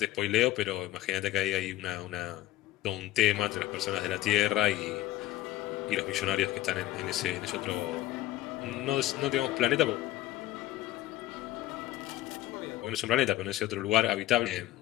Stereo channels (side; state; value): right; quieter; 15.0 dB